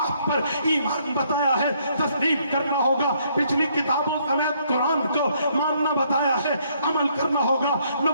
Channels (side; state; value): both; inverted; correlation -0.68